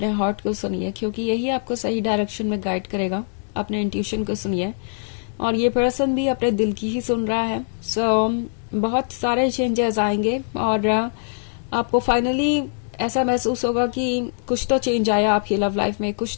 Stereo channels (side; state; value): right; silent; digital silence